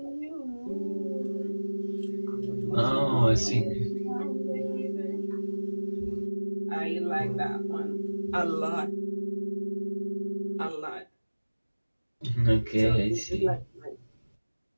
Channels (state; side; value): inverted; both; correlation -1.00